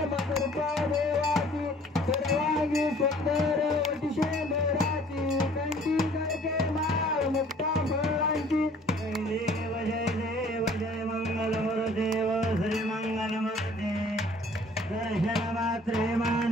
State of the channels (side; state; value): both; normal; correlation 0.54